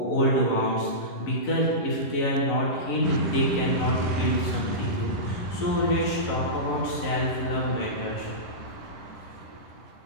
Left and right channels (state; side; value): late; right; 11 ms